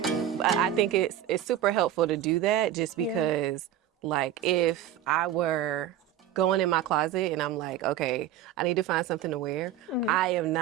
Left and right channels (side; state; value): left; quieter; 10.9 dB